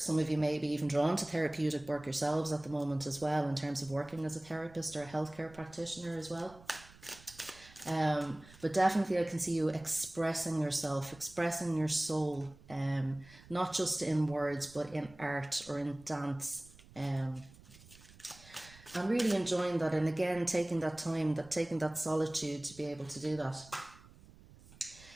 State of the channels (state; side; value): noise; right; rumble, 22 dB below the sound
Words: of you may be even drawn to therapeutic work yourselves at the moment as well, in terms of working as a therapist or a healthcare practitioner as well. But definitely I can see you expressing yourself, expressing your soul, not just in words, but in art or in dance. I'm really enjoying that, and again, taking that time, taking that solitude to be able to do that.